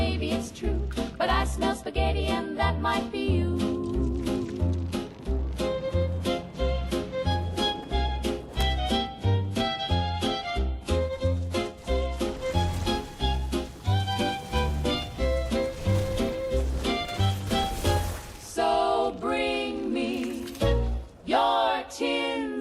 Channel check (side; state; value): both; identical; correlation 1.00